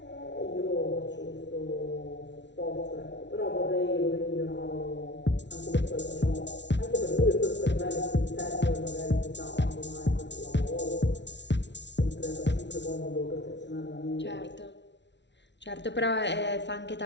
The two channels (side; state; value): right; late; 0.51 ms